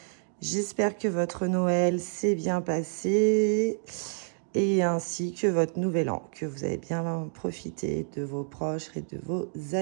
J'espère que votre Noël s'est bien passé et ainsi que votre nouvel an, que vous avez bien profité de vos proches et de vos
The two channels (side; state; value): left; silent; digital silence